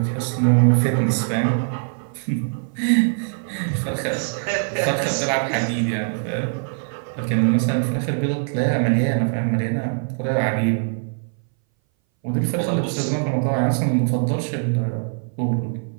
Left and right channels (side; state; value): left; silent; 60 dB below the other